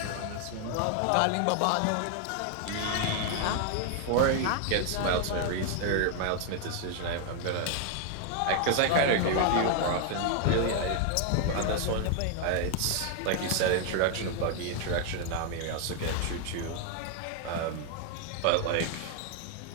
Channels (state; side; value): different; both; correlation 0.00